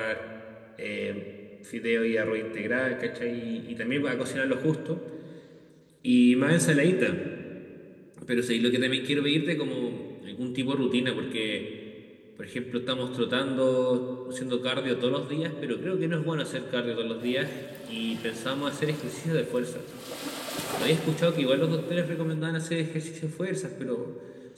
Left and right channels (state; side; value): identical; both; correlation 1.00